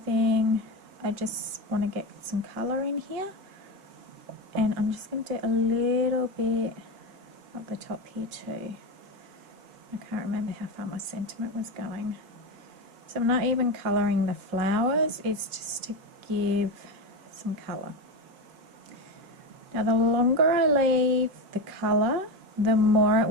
I just want to get some colour in here. And I'm just going to do a little bit at the top here too. I can't remember how far my sentiment was going. So I'm not even colouring the flowers, it's just to give some colour. Now the longer I leave the colour, the more it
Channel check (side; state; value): left; late; 5.1 ms